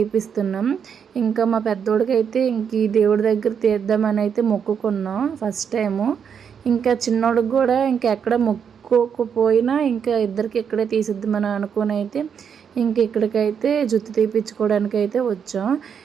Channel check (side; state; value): left; quieter; 7.3 dB